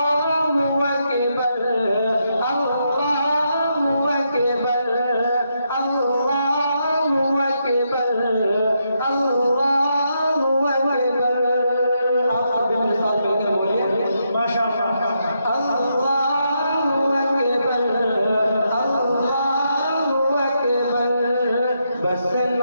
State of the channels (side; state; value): both; inverted; correlation -0.80